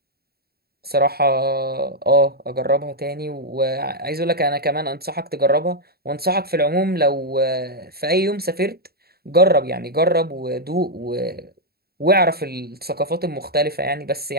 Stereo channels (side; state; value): left; late; 0.45 ms